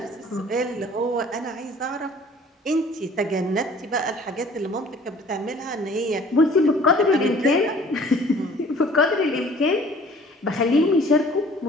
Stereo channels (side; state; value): both; normal; correlation 0.52